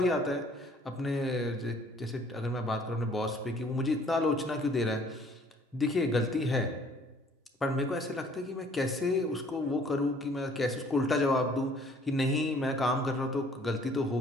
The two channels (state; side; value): normal; both; correlation 0.58